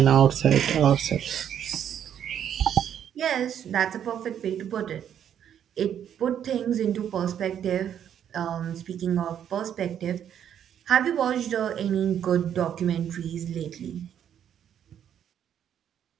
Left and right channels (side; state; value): left; quieter; 9.4 dB